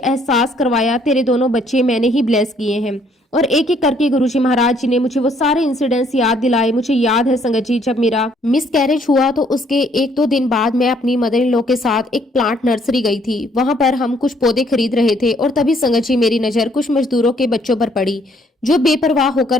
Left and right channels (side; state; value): both; normal; correlation 0.65